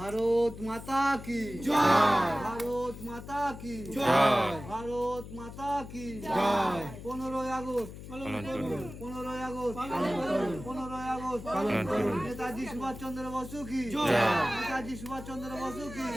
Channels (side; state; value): left; noise; hum, 12 dB below the sound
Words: ভারত মাতা কি জয়। ভারত মাতা কি জয়। ভারত মাতা কি জয়। 15ই আগস্ট পালন করুন। 15ই আগস্ট পালন করুন। 15ই আগস্ট পালন করুন। নেতাজি সুভাষচন্দ্র বসু কি জয়। নেতাজি সুভাষচন্দ্র বসু কি